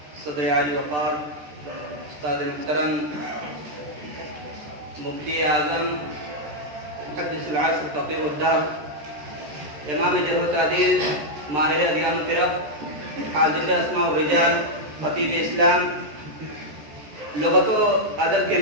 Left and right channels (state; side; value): late; left; 13 ms